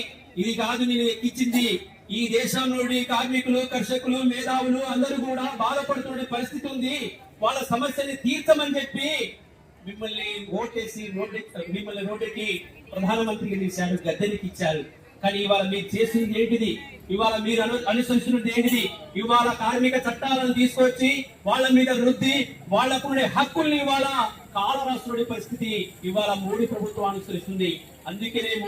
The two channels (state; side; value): identical; both; correlation 1.00